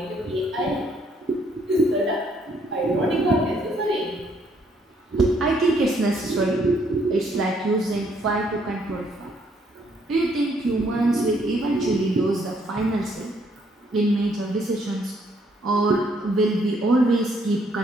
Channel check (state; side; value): normal; both; correlation 0.68